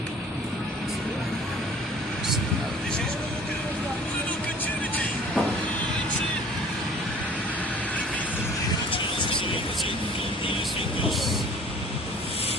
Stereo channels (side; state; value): both; normal; correlation 0.49